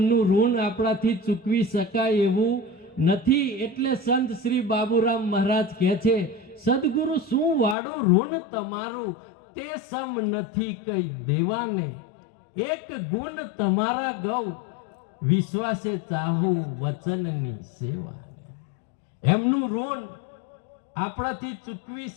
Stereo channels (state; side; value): drops out; right; at 7.8 s